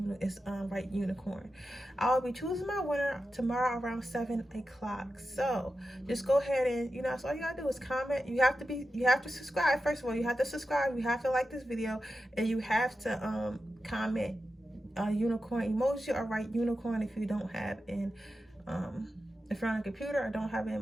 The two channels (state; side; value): normal; both; correlation 0.91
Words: write unicorn. I'll be choosing my winner tomorrow around 7 o'clock. So just go ahead and, so all you gotta do is comment. You have to subscribe. First of all, you have to subscribe, you have to like this video, and you have to comment a unicorn emoji or write unicorn if you don't have if you're on a computer or don't have